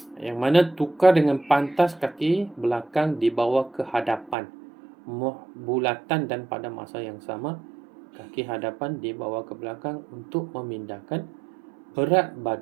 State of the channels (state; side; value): drops out; left; at 4.4 s